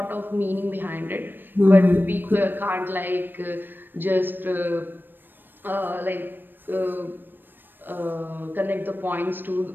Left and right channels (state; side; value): late; left; 0.094 ms